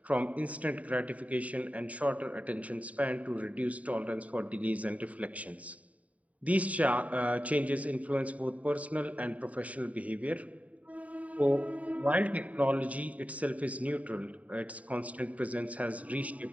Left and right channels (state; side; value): late; left; 0.069 ms